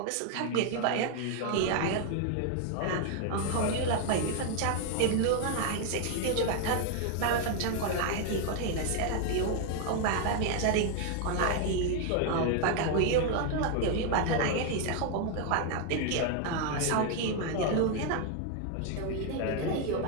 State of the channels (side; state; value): both; different; correlation 0.00